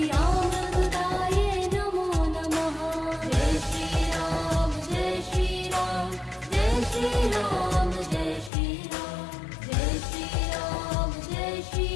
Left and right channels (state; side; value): drops out; right; at 8.5 s